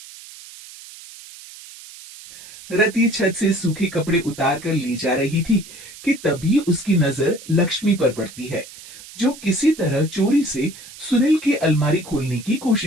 रति छत से सूखे कपड़े उतार कर ले जा रही थी कि तभी उसकी नजर लक्ष्मी पर पड़ती है, जो किसी तरह चोरी से सुनील की अलमारी खोलने की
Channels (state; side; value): noise; right; hiss, 17 dB below the sound